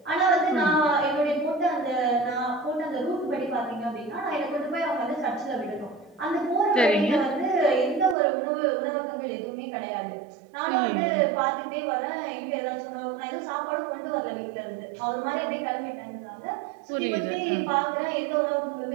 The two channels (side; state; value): left; drops out; at 8.2 s